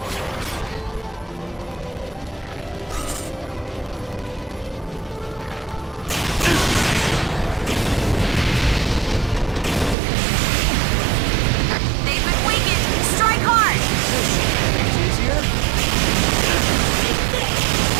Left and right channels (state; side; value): drops out; left; at 10.0 s